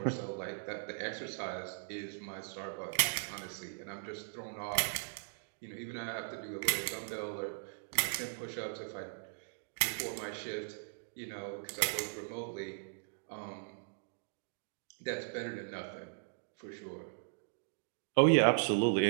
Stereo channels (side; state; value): left; silent; digital silence